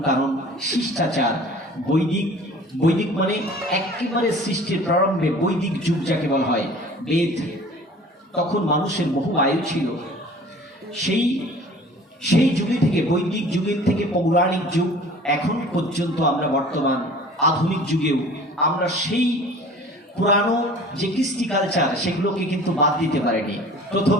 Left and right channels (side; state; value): both; normal; correlation 0.46